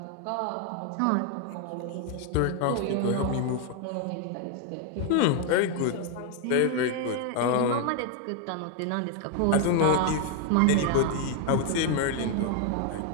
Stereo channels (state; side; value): different; both; correlation 0.00